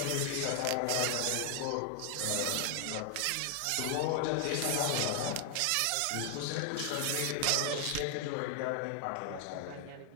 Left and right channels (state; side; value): different; both; correlation 0.00